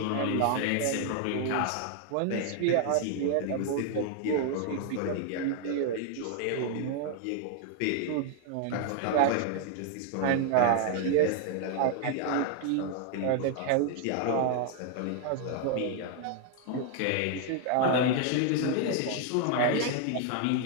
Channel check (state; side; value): different; both; correlation 0.00